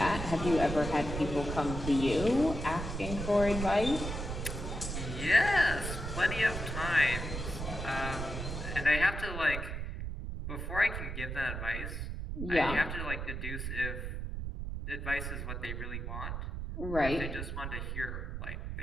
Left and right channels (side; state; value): right; noise; rumble, 5 dB below the sound